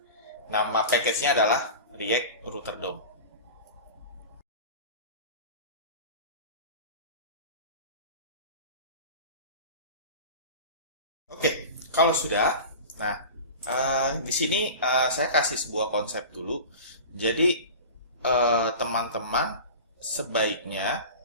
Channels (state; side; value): inverted; both; correlation -0.33